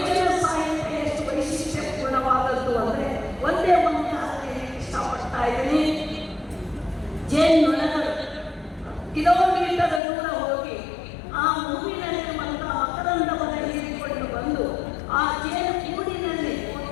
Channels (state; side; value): drops out; right; at 10.0 s